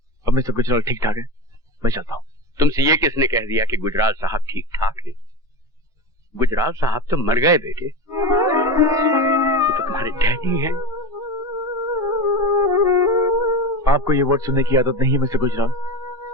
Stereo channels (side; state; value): both; normal; correlation 0.25